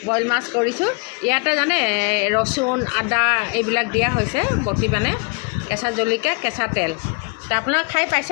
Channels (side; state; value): right; quieter; 31.6 dB